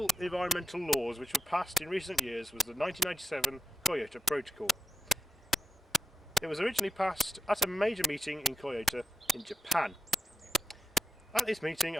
environmental laws which were passed in recent years was the 1997 Kyoto Protocol. It was originally passed at a major meeting in Kyoto in Japan. At this meeting,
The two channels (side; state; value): both; normal; correlation 0.89